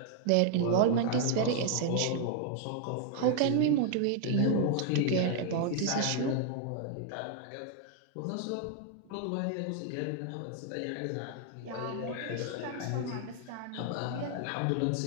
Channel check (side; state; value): both; different; correlation 0.00